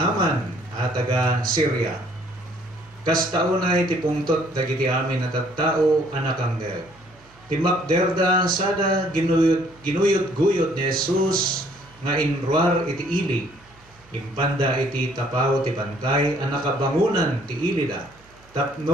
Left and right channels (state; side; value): noise; right; hum, 28 dB below the sound